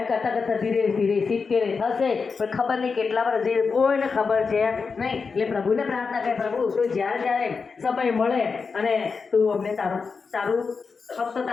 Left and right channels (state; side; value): quieter; right; 5.0 dB